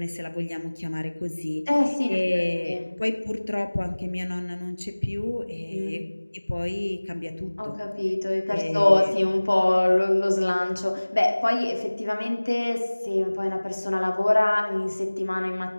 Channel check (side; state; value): both; inverted; correlation -1.00